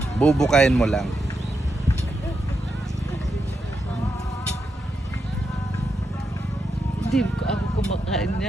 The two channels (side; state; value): both; normal; correlation 0.84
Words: Bubukayin mo lang. Hindi ko ako kumakain